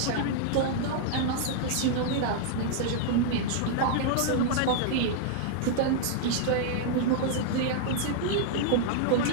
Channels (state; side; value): different; both; correlation -0.01